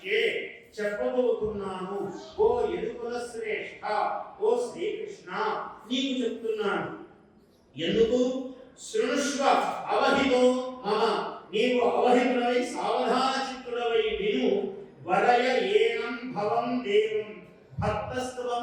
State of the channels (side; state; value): both; identical; correlation 1.00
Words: చెప్పబోతున్నాను, ఓ యదుకుల శ్రేష్ఠ, ఓ శ్రీకృష్ణ నీకు చెప్తున్నాను. ఎందుకు? శృణుష్వ అవహితో మమ, నీవు అవహితుడవై సావధాన చిత్తుడవై విను. వరయ ఏనం భవం దేవం